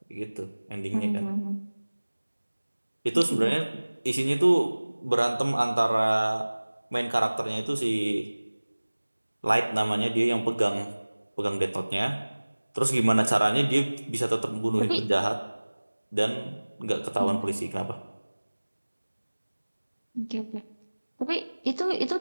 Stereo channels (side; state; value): both; inverted; correlation -1.00